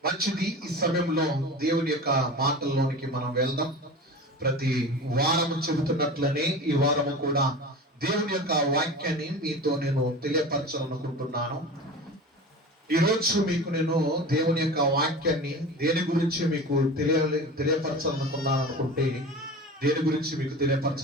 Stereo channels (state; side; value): normal; both; correlation 0.33